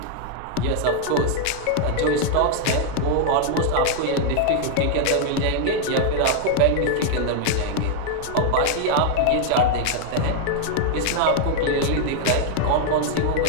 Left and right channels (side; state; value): both; different; correlation 0.00